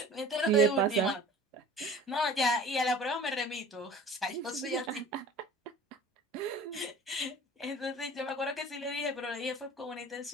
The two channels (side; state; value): both; normal; correlation 0.43